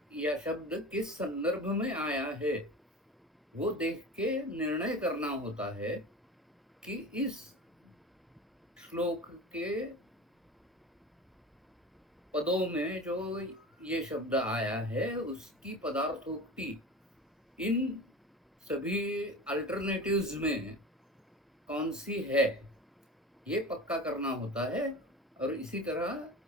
या शब्द किस संदर्भ में आया है वो देख के निर्णय करना होता है कि इस श्लोक के पदों में जो ये शब्द आया है उसकी पदार्थोक्ति इन सभी अल्टरनेटिव्स में कौन सी है ये पक्का करना होता है। और इसी तरह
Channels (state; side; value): normal; both; correlation 0.33